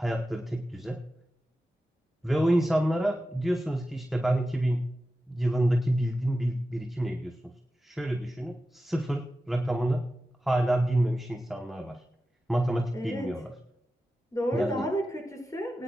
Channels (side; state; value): both; normal; correlation 0.93